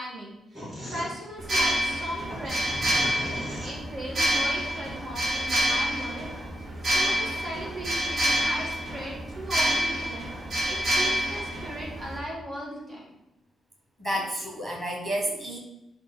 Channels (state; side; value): normal; both; correlation 0.85